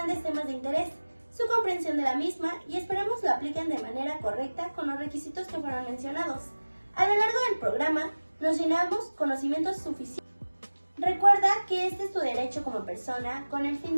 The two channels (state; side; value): inverted; both; correlation -1.00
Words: temas de interés, su comprensión de la misma, y esperemos lo apliquen de manera correcta con los requisitos que fueron mencionados. A lo largo del programa, nos llenamos conocimientos suficientes. Recuerda que este es tu derecho como persona con el